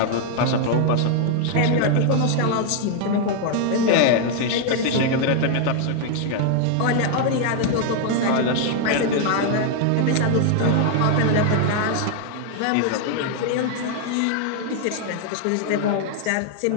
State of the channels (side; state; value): both; different; correlation 0.00